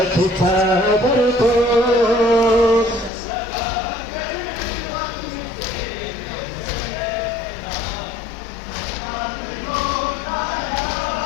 की चादर को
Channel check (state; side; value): drops out; right; at 3.1 s